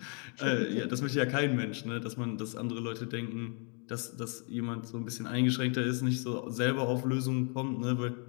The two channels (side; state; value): right; quieter; 38.7 dB